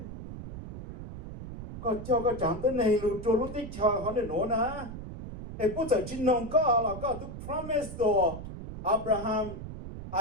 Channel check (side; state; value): right; noise; rumble, 10 dB below the sound